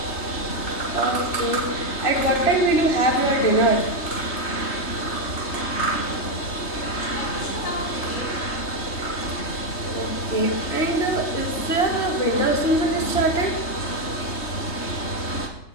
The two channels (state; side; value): late; right; 3.3 ms